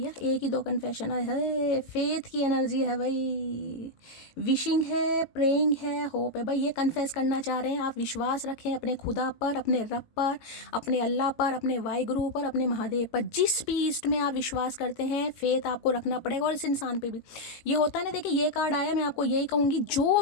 एक ही दो कन्फेशन है। फेथ की एनर्जी है भाई, विशिंग है, प्रेइंग है, होप है भाई। ये कन्फेस करना चाह रहे हैं आप, विश्वास रखें अपने खुदा पर, अपने रब पर, अपने अल्लाह पर, अपने वाहिगुरु पर, अपने महादेव पर, जिस भी ईस्ट में आप विश्वास करते हैं, फेथ आपको रखना पड़ेगा। और इस इंसान पे भी ये होता है ना, देखिए ये कार्ड आया, मैं आपको यही कहूँगी, जो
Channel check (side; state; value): right; late; 18 ms